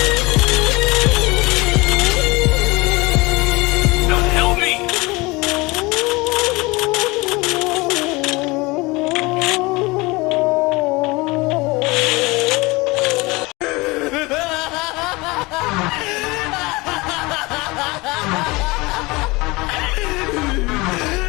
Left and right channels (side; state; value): right; quieter; 23.5 dB